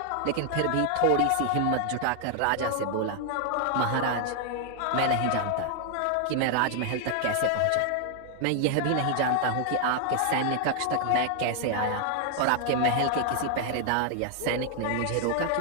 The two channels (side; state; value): both; different; correlation 0.00